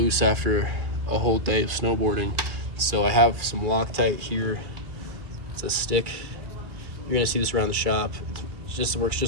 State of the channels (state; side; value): late; left; 2.3 ms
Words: after a whole day of snowboarding. So I have some Loctite here. It's a stick. You're gonna see this around the shop. It works